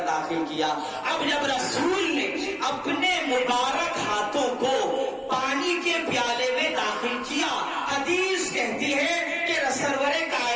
داخل کیا. اب جب رسول نے اپنے مبارک ہاتھوں کو پانی کے پیالے میں داخل کیا, حدیث کہتی ہے کہ سرور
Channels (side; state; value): both; identical; correlation 1.00